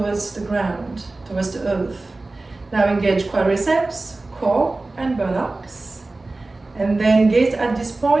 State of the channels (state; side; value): quieter; left; 3.2 dB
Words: the ground, towards the earth. Now engage quadriceps, core, and buttocks. And then gaze at this